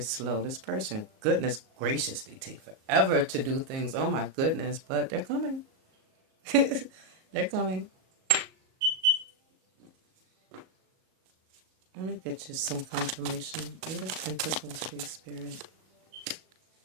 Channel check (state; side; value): late; left; 37 ms